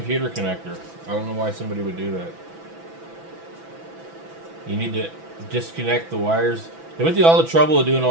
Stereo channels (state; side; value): late; left; 6.0 ms